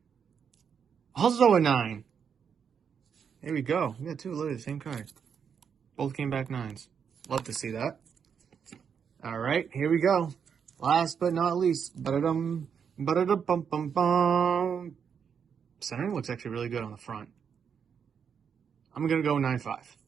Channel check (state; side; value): quieter; left; 7.1 dB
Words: Also a 9. Here we go. We got 2 literally the same card. Both came back 9s. Love to see that. All right, here we go. Last but not least. Ba-da-dum, ba-da-da-bum-bum-bum. Centering looks actually really good on the front. I'm going to go 9.5.